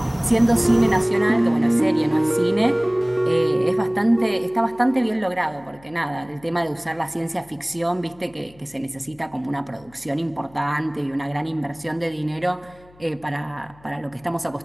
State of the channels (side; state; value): left; noise; hum, 26 dB below the sound